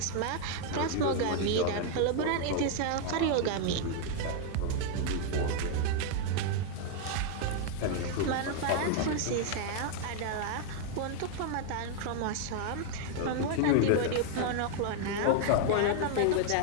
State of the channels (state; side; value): different; both; correlation 0.00